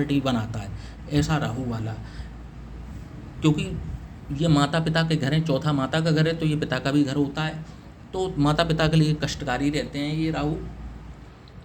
बनाता है। ऐसा राहु वाला, क्योंकि ये माता पिता के घर हैं, चौथा माता का घर है तो ये पिता का भी घर होता है, तो माता पिता के लिए कष्टकारी रहते हैं ये राहु।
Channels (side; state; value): both; identical; correlation 1.00